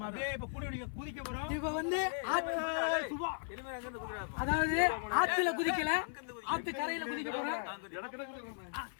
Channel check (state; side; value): silent; right; 53 dB below the other